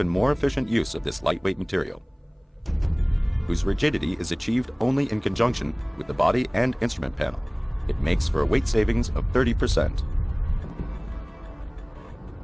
more efficient use of this lightweight material, whose rigidity is achieved only in conjunction with the body and instrument panel. It makes for a weight savings of 30%.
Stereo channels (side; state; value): both; identical; correlation 1.00